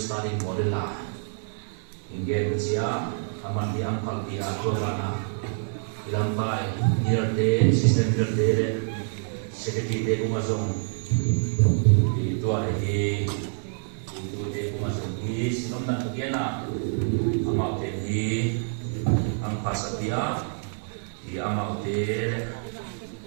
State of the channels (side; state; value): left; silent; 60 dB below the other